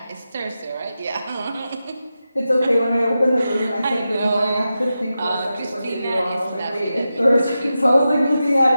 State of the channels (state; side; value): inverted; both; correlation -0.91